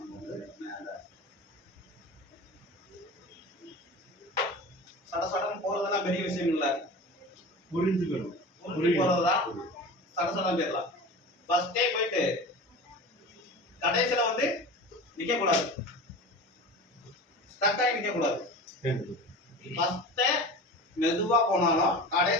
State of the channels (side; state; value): both; normal; correlation 0.33